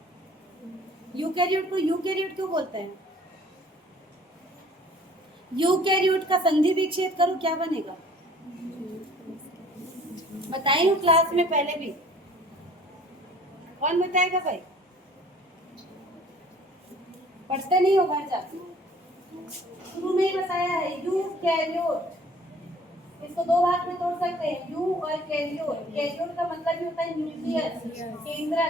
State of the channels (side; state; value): both; normal; correlation 0.53